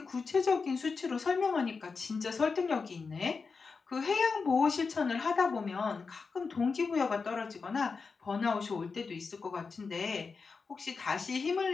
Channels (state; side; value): quieter; right; 4.8 dB